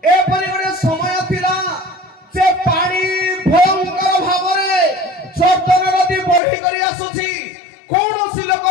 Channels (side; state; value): right; drops out; at 6.4 s